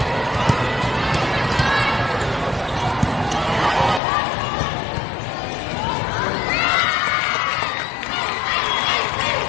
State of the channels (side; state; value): right; drops out; at 4.0 s